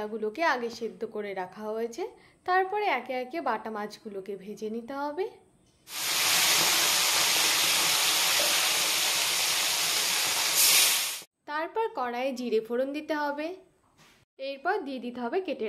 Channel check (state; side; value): identical; both; correlation 1.00